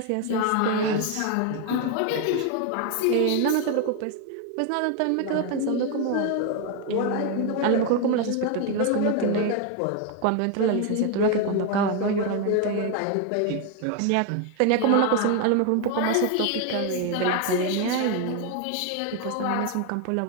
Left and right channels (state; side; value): different; both; correlation 0.01